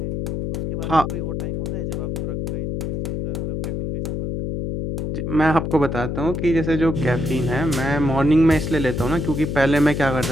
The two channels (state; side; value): noise; left; hum, 3 dB below the sound